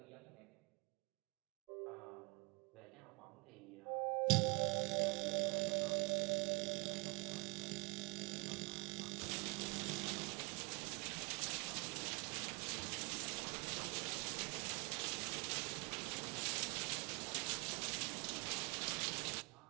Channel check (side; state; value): left; quieter; 30.7 dB